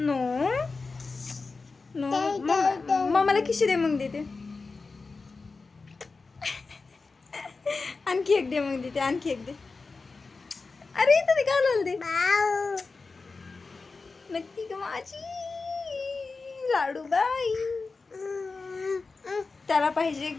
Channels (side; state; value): right; quieter; 4.1 dB